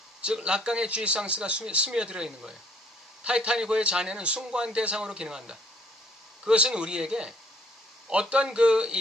즉 락강의 쥐상스가 스며들어 있는 거예요. 타이타닉호의 잔해는 숭고한 대상으로 기능한다. 그것은 우리에게 어떤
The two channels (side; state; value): both; normal; correlation 0.63